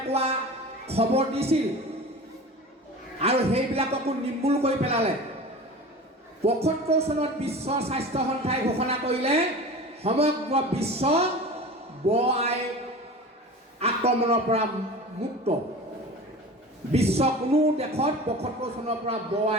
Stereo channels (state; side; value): normal; both; correlation 0.35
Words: খবৰ দিছিল আৰু সেইবিলাককো নিৰ্মূল কৰি পেলালে। ৭৫ চনত বিশ্ব স্বাস্থ্য সংস্থাই ঘোষণা কৰিলে সমগ্ৰ বিশ্ব আই আক্ৰমণৰ পৰা মুক্ত। বিশ্ব কোনো দেশত ৭৫ চনৰ পৰা